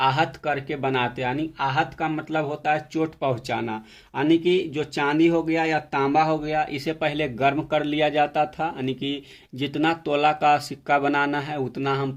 करके बनाते हैं। यानी आहत का मतलब होता है चोट पहुंचाना। यानी कि जो चांदी हो गया या तांबा हो गया इसे पहले गर्म कर लिया जाता था। यानी कि जितना तोला का सिक्का बनाना है उतना हम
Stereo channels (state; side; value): identical; both; correlation 1.00